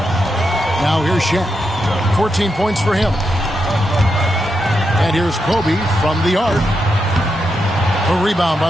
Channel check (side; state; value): both; normal; correlation 0.84